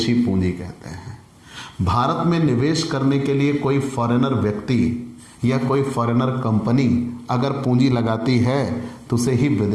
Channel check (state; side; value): identical; both; correlation 1.00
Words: पूंजी कहते हैं। भारत में निवेश करने के लिए कोई फॉरेनर व्यक्ति या कोई फॉरेनर कंपनी अगर पूंजी लगाती है तो उसे ही